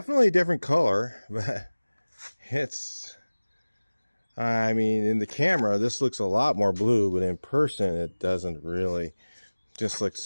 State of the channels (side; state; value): both; inverted; correlation -1.00